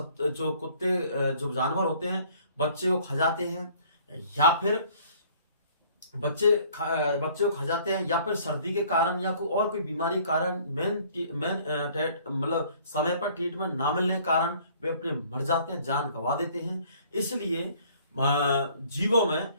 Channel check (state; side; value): inverted; both; correlation -0.57